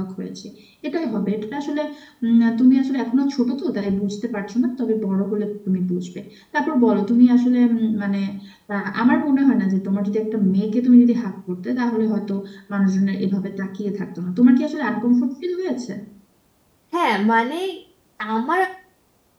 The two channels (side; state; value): both; identical; correlation 1.00